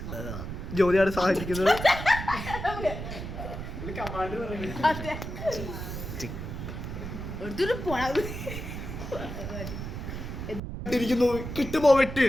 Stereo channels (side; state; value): right; noise; rumble, 7 dB below the sound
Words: ജ്യോതിയാണ് സഹായിക്കുന്നത്. കിട്ടുമോ വെട്ട്.